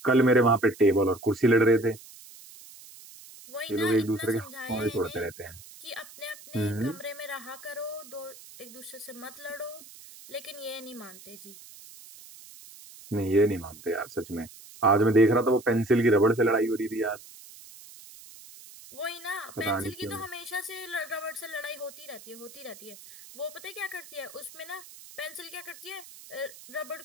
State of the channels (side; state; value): right; noise; hiss, 19 dB below the sound